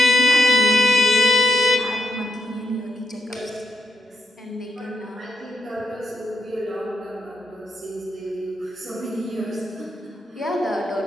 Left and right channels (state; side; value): normal; both; correlation 0.76